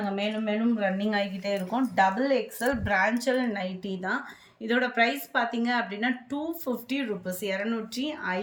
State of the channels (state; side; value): identical; both; correlation 1.00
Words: மேலும் மேலும் ரன்னிங் ஆகிக்கிட்டே இருக்கோம். XXL பிரான்ச்சல் நைட்டி தான். இதோட ப்ரைஸ் பார்த்தீங்க அப்படின்னா 250 ரூபீஸ்,